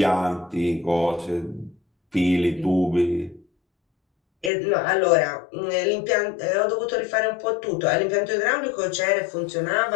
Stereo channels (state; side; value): drops out; right; at 4.5 s